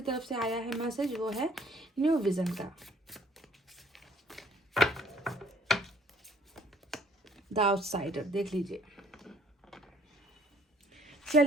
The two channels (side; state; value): both; normal; correlation 0.59